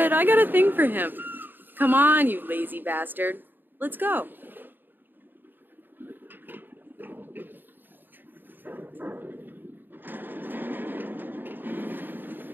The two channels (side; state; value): left; late; 0.093 ms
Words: I got a thing for him. Come on, you lazy bastard. Let's go.